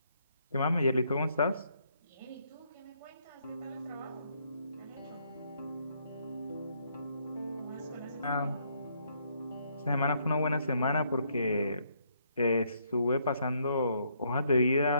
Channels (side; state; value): both; inverted; correlation -0.72